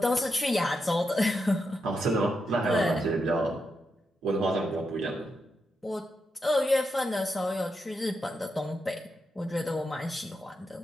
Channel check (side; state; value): both; normal; correlation 0.85